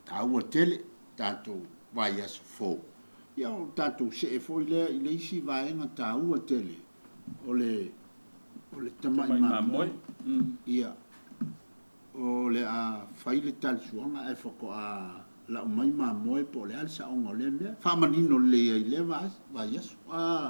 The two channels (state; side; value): inverted; both; correlation -1.00